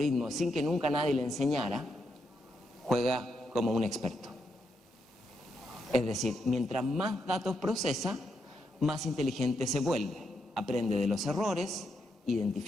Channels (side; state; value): both; normal; correlation 0.81